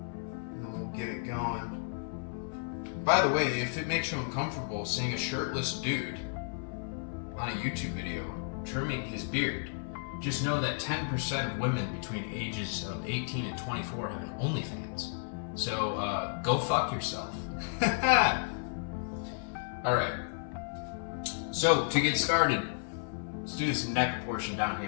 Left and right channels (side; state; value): right; silent; 56 dB below the other